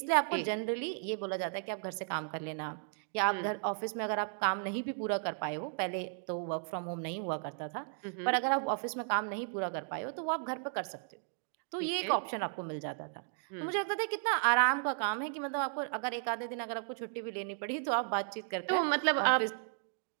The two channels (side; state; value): left; silent; 55 dB below the other